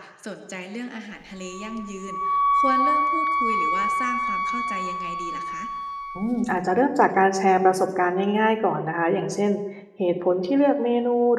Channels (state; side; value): identical; both; correlation 1.00